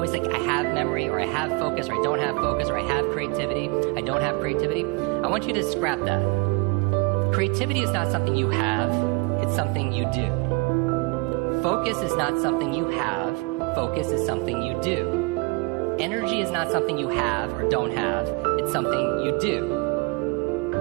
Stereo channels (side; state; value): left; quieter; 29.5 dB